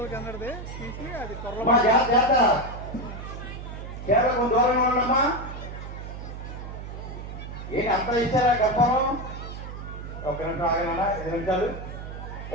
కిందది తీసి అది దూరంగా ఉండమ్మా. ఏంటి అంత ఇచ్చారా గొప్పం? ఒక నిమిషం ఆగనా, 5 నిమిషాలు.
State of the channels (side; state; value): right; noise; hum, 9 dB below the sound